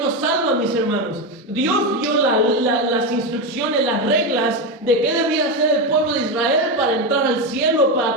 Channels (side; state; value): both; normal; correlation 0.13